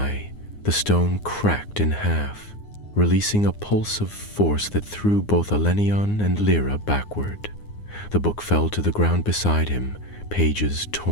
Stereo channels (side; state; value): right; late; 9.7 ms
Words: the stone cracked in half, releasing a pulse of force that threw both Elenian and Lyra backward. The book fell to the ground beside him, pages